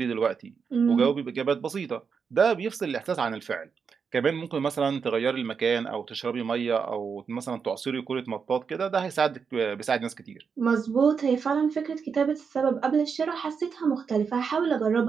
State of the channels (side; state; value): left; quieter; 6.0 dB